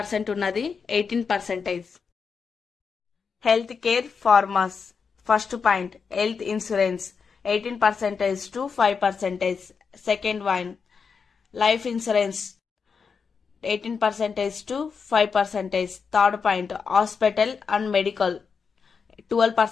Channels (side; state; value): right; quieter; 5.7 dB